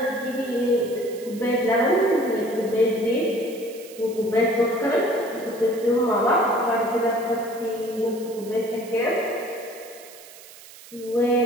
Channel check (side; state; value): right; noise; hiss, 19 dB below the sound